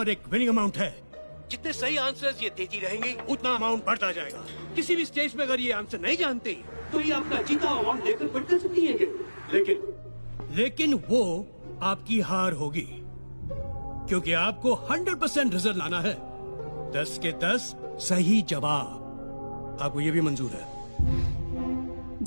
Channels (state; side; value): inverted; both; correlation -1.00